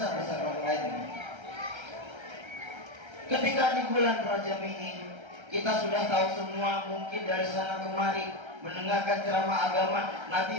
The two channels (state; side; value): late; left; 1.3 ms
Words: orang lain. Ketika di bulan Rajab ini, kita sudah tahu semua mungkin dari sana kemari mendengarkan ceramah agama